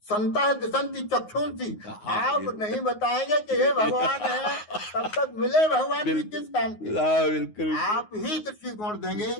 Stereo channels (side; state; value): right; late; 9.5 ms